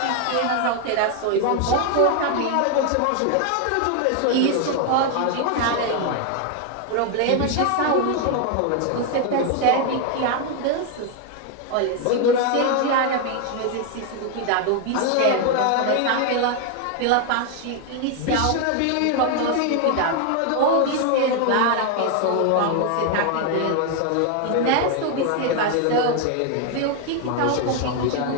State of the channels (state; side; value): different; both; correlation 0.01